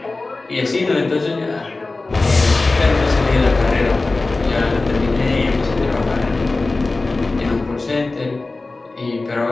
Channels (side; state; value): right; quieter; 3.4 dB